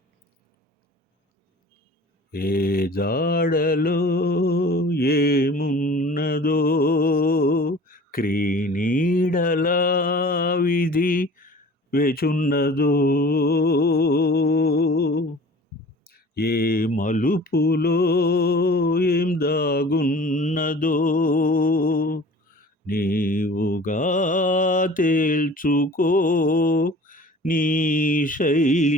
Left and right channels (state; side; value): normal; both; correlation 0.44